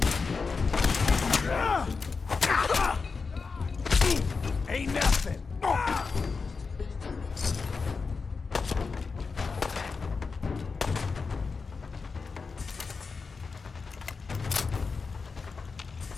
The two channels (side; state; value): right; quieter; 4.7 dB